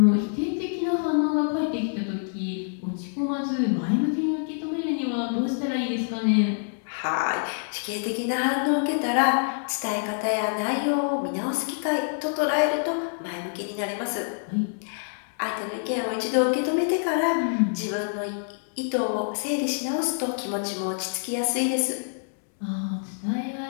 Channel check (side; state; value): right; silent; digital silence